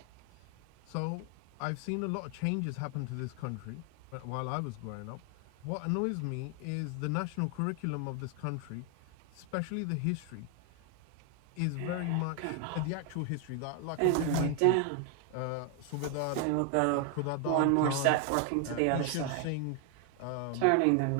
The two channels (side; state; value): both; different; correlation 0.00